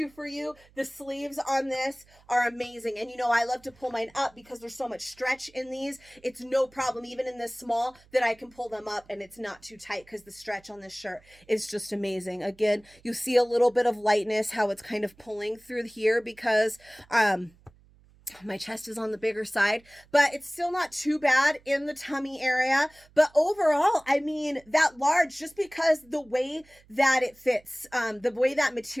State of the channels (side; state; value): right; noise; hum, 29 dB below the sound